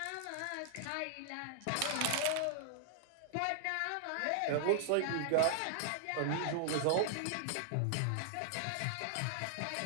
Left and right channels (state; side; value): different; both; correlation -0.01